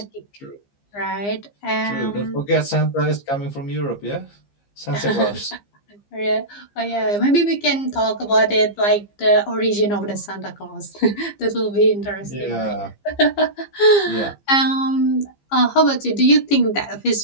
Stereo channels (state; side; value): late; right; 15 ms